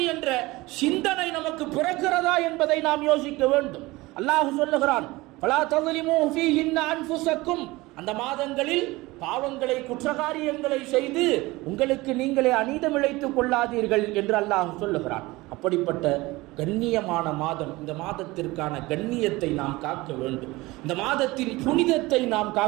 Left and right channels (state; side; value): quieter; left; 20.9 dB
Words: என்ற சிந்தனை நமக்கு பிறக்கிறதா என்பதை நாம் யோசிக்க வேண்டும். அல்லாஹ் சொல்லுகிறான், ஃபலா தظلمூ ஃபீஹின்ன அன்ஃபுஸக்கும், அந்த மாதங்களில் பாவங்களை, குற்றகாரியங்களை செய்து உங்களுக்கு நீங்களே அநீதம் இழைத்துக் கொள்ளாதீர்கள் என்று அல்லாஹ் சொல்லுகிறான். அப்படிப்பட்ட கண்ணியமான மாதம், இந்த மாதத்திற்கான கண்ணியத்தை நாம் காக்க வேண்டும். இந்த மாதத்தின் புனிதத்தை நாம்